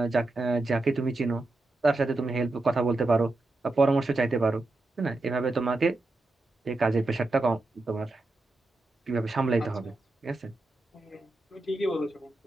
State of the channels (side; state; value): left; quieter; 3.0 dB